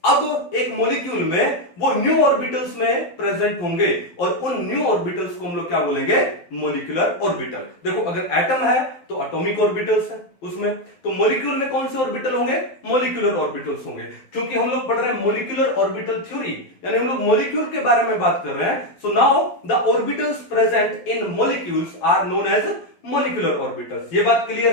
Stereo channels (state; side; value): late; right; 12 ms